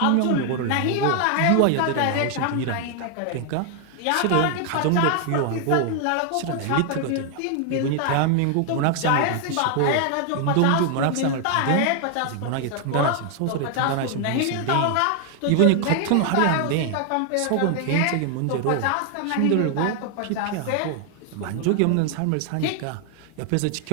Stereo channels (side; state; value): both; different; correlation 0.00